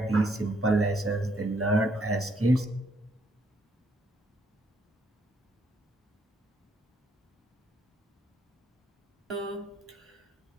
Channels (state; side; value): normal; both; correlation 0.71